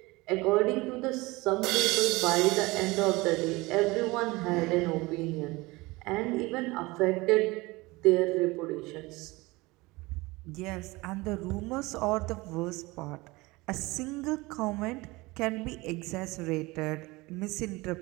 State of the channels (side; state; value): left; quieter; 22.4 dB